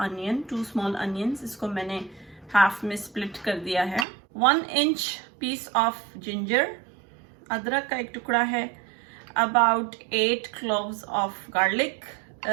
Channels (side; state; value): left; drops out; at 4.0 s